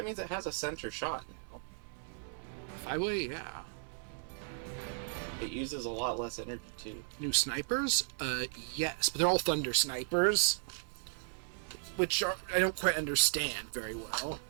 means it has a center shot now. 5-way, yeah. It uses a lot less energy too. New snipers? Yes, but they're all thunder snipers, which are, I don't quite understand very well.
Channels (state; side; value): silent; left; 54 dB below the other